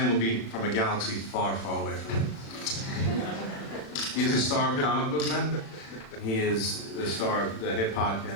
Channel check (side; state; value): right; late; 36 ms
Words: would be from a galaxy far, far away from it. He is a star of comic book men. He is the star of the hit